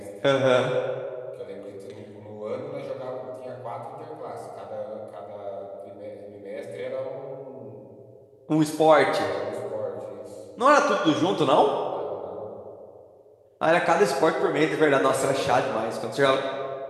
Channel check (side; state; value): both; identical; correlation 1.00